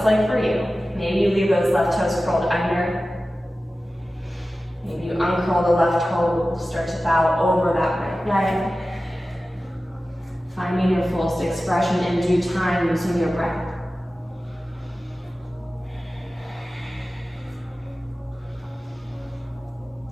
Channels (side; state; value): both; normal; correlation 0.95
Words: like for you, maybe you leave those left toes curled under, maybe you uncurl the left toe, start to bow over that right leg, finding your fullest expression in due time using your breath.